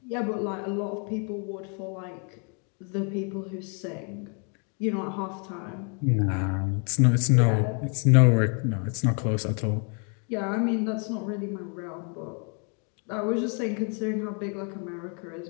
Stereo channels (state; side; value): quieter; right; 38.9 dB